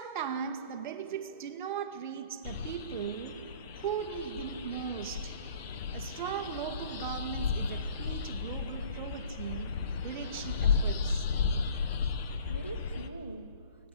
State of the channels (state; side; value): inverted; both; correlation -0.49